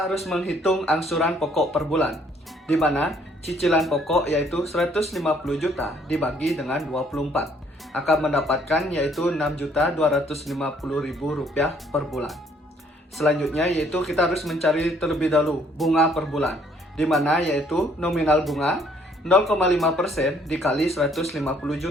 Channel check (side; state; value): both; normal; correlation 0.64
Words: harus menghitung angsuran pokok per bulan, di mana cicilan pokok yaitu 150 juta dibagi dengan 24 akan mendapatkan yaitu Rp6.250.000 per bulan. Selanjutnya yaitu kita harus mencari terlebih dahulu bunga per bulan, di mana yaitu nominal bunga 0,5% dikali 150